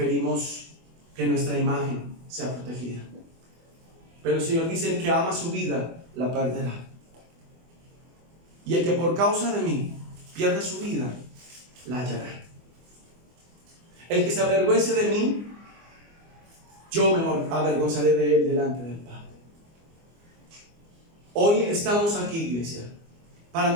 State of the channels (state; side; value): late; left; 24 ms